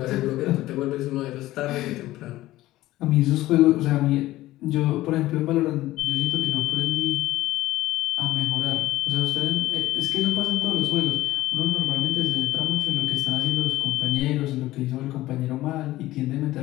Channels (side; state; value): right; quieter; 16.3 dB